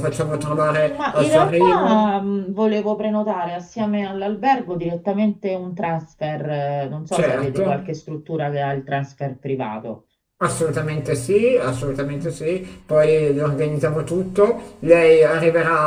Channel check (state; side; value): identical; both; correlation 1.00